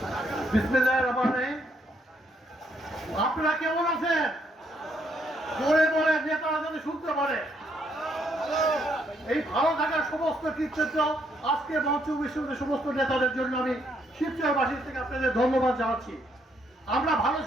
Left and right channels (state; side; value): normal; both; correlation 0.73